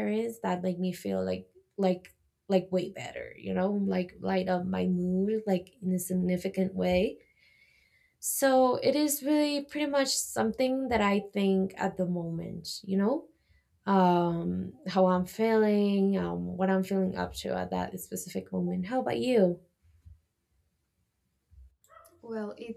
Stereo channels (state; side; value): identical; both; correlation 1.00